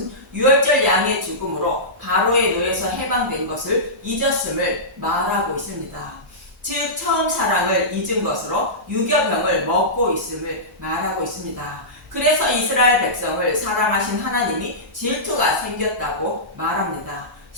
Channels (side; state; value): both; normal; correlation -0.17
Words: 유월절 양의 죽음으로 바로의 노예에서 해방된 것을 잊었음을 말하고 있습니다. 즉 처음 사랑을 잊은 것으로 유교병을 먹고 있음을 말하고 있습니다. 그래서 이스라엘 백성을 사랑하신 하나님이 질투가 생겼다고 말합니다.